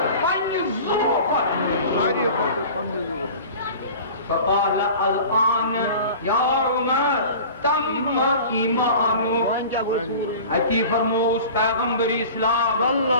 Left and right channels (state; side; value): inverted; both; correlation -0.40